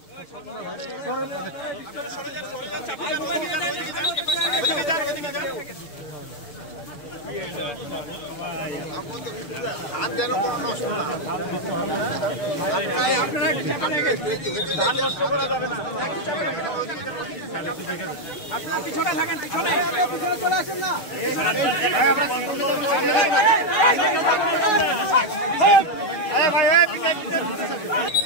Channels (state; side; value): late; right; 6.5 ms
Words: ধান যেন কোনো নষ্ট না, ধান নষ্ট করা যাবে না। পিছনে থাকেন, পিছনে চলে আসেন না।